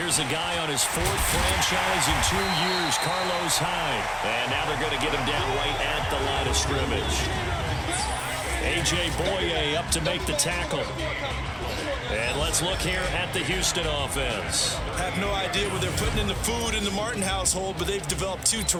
a guy on his 4th franchise in 2 years, Carlos Hyde. And now they're going to get him down right at the line of scrimmage. A.J. Boye up to make the tackle. And let's look here at the Houston offense. I have no idea what they're putting in the food in the Martin household, but they've developed 2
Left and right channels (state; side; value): identical; both; correlation 1.00